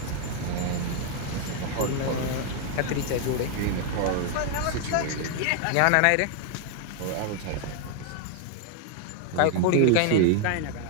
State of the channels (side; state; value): both; different; correlation 0.00